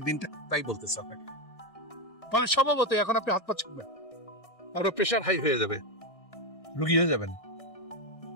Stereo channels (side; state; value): right; late; 1.6 ms